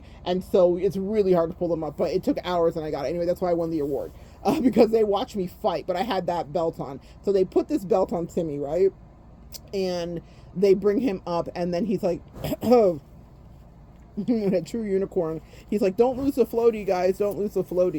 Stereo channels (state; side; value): identical; both; correlation 1.00